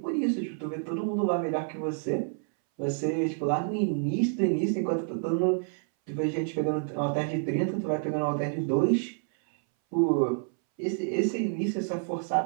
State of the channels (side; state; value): left; silent; 59 dB below the other